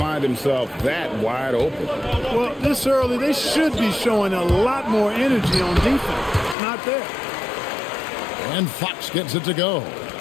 himself that wide open. Well, this early, they should be showing a lot more energy on defense. It's not there. And Fox gets it to go.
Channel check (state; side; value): drops out; right; at 6.6 s